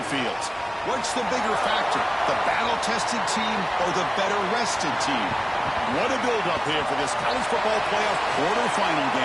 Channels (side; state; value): both; identical; correlation 1.00